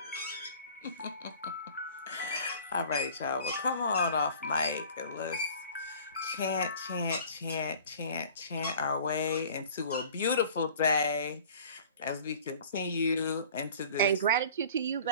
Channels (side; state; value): both; inverted; correlation -0.46